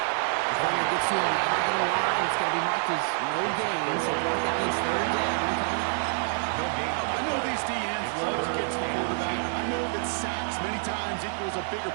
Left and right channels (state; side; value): silent; left; 60 dB below the other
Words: Defender gets to him right on the line. It's going to be marked as no gain. So that means third down coming up. No gain on the I know these DNs love to get to the quarterback. I know that sacks many times equals a bigger